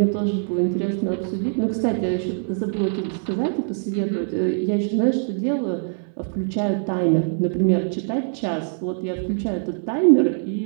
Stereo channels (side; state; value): left; silent; 63 dB below the other